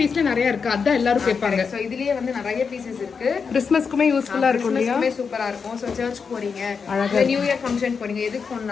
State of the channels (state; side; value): quieter; right; 5.7 dB